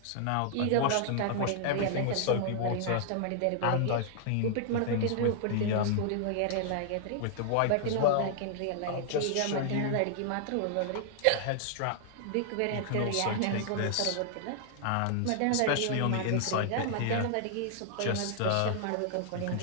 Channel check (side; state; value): both; different; correlation -0.01